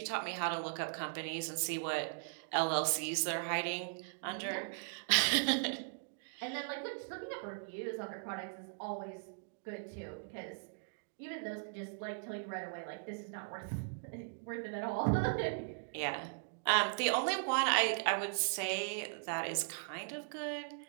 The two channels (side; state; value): left; silent; digital silence